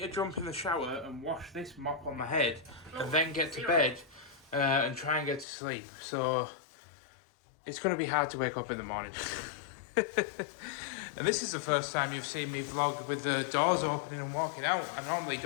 to jump in the shower and wash this mop on my head, and then get to bed and try and get to sleep. So it's going to be hard to wake up in the morning. And this is the first time you've seen me vlog with the doors opening and walking out. I normally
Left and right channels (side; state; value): right; drops out; at 5.5 s